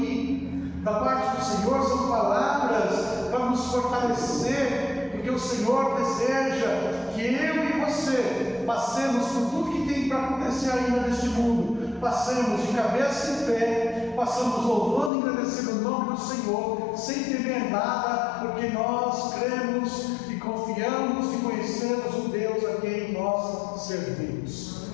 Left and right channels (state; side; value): drops out; right; at 15.1 s